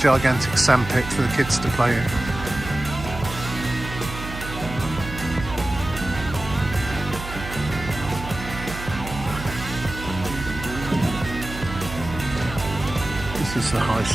sandpit for the kids to play in. This is the high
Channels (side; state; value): right; noise; hum, 10 dB below the sound